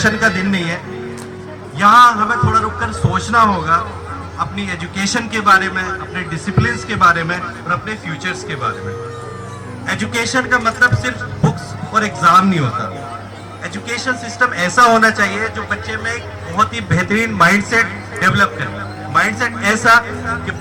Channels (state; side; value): identical; both; correlation 1.00